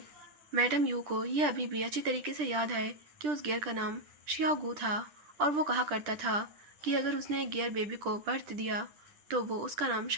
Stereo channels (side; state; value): left; late; 10 ms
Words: मैडम यू को ये अभी भी अच्छी तरीके से याद है कि उस गेयर का नाम शियागू था और वो कहा करता था कि अगर उसने एक गेयर बेबी को बर्थ दिया तो वो उसका नाम